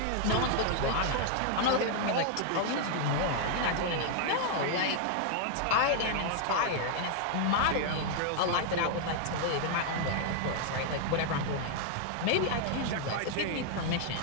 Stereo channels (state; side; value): different; both; correlation 0.00